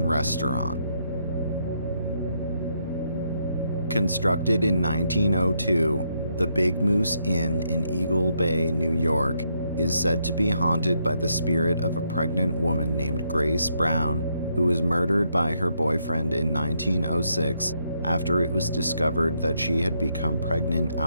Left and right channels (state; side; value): inverted; both; correlation -0.76